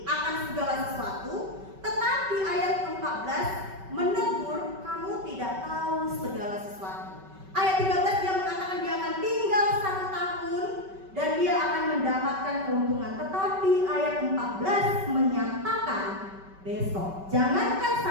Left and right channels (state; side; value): late; left; 5.2 ms